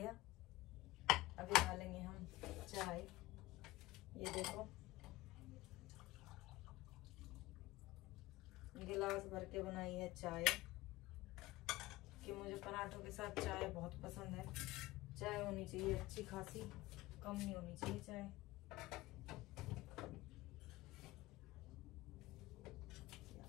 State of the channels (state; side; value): quieter; right; 18.7 dB